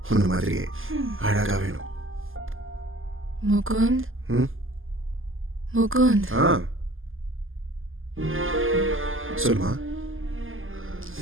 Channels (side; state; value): left; late; 0.59 ms